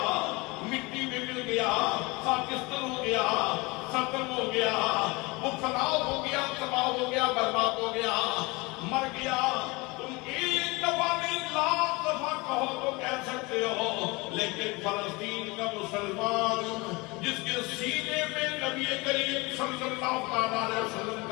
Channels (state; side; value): quieter; right; 25.0 dB